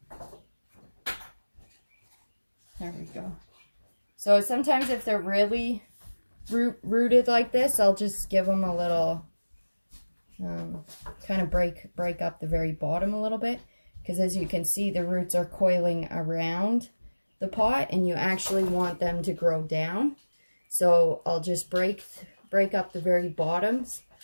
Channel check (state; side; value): inverted; both; correlation -1.00